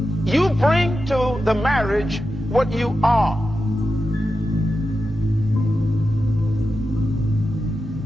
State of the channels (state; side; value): normal; both; correlation 0.90